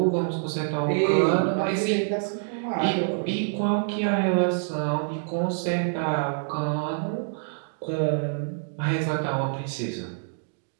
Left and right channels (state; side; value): silent; left; digital silence